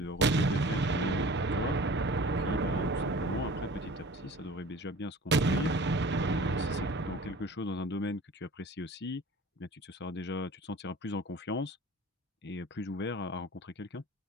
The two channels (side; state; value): both; normal; correlation 0.43